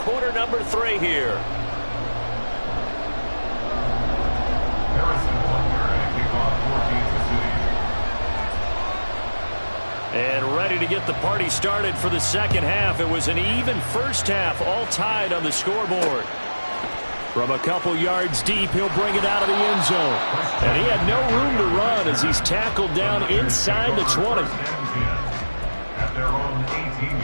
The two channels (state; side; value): inverted; both; correlation -1.00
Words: number 3 here. Harrison Butker to kick off for Kansas City. And ready to get the party started for the second half. It was an even first half, all tied on the scoreboard. From a couple yards deep, he'll bring it out of the end zone. And he had no room to run as he's tackled down inside the 20. At their own